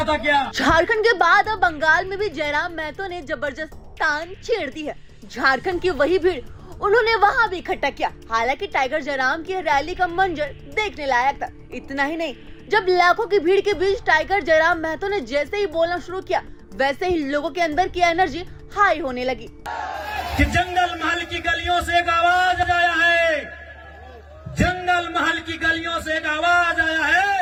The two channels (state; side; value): identical; both; correlation 1.00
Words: था क्या? झारखंड के बाद अब बंगाल में भी जयराम महतो ने जबरदस्त तान छेड़ दी है। झारखंड की वही भीड़ उन्होंने वहां भी इकट्ठा किया। हालांकि टाइगर जयराम की रैली का मंजर देखने लायक था। इतना ही नहीं, जब लाखों की भीड़ के बीच टाइगर जयराम महतो ने जैसे ही बोलना शुरू किया, वैसे ही लोगों के अंदर की एनर्जी हाई होने लगी। कि जंगल महल की गलियों से एक आवाज आया है, जंगल महल की गलियों से एक आवाज आया